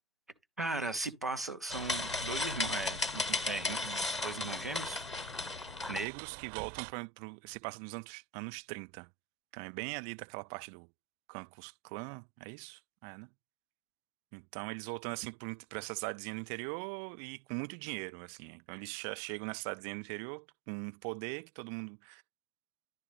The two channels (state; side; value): drops out; left; at 6.1 s